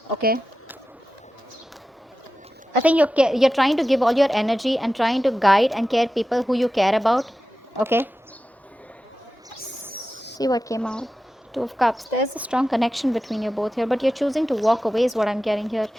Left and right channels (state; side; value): normal; both; correlation 0.93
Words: okay? I think you're trying to give all your energy and trying to guide and care people who you care about, okay? See what came out. Two of Cups. There's a strong connection between you both here, but you're choosing to walk away is what I'm getting here.